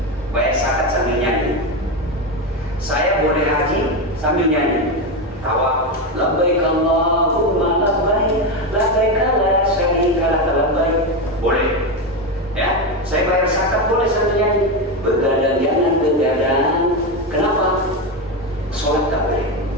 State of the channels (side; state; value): both; normal; correlation 0.13